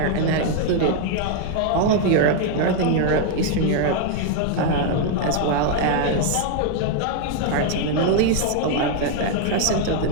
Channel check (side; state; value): both; different; correlation 0.00